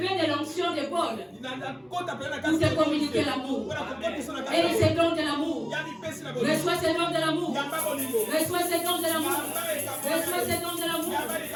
de l'onction de Paul pour te communiquer l'amour. Et ces dons de l'amour. Reçois ces dons de l'amour. Reçois ces dons de l'amour. Reçois ces dons de l'amour.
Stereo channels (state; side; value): identical; both; correlation 1.00